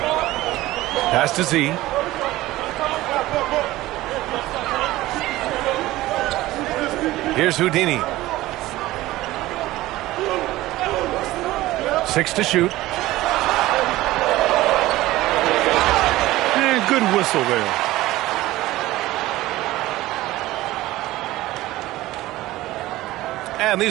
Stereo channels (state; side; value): quieter; left; 17.1 dB